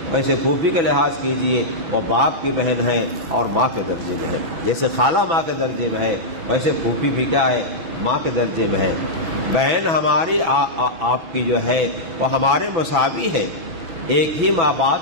ویسے پھوپھی کا لحاظ کیجیے، وہ باپ کی بہن ہے اور ماں کے درجے میں ہے۔ جیسے خالہ ماں کے درجے میں ہے ویسے پھوپھی بھی کیا ہے؟ ماں کے درجے میں ہے۔ بہن ہماری آپ کی جو ہے وہ ہمارے مساوی ہے، ایک ہی ماں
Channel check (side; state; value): left; late; 6.1 ms